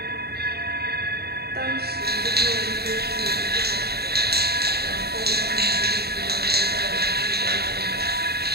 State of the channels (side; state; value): left; late; 0.47 ms